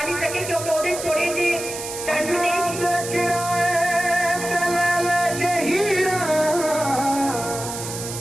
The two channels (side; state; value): right; noise; hiss, 8 dB below the sound